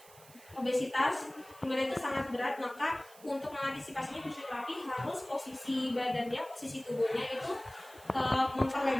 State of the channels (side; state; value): right; noise; hiss, 22 dB below the sound